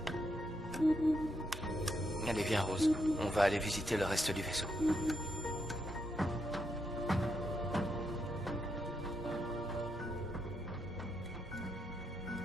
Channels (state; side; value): normal; both; correlation 0.80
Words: Allez, viens, Rose. On va aller visiter le reste du vaisseau.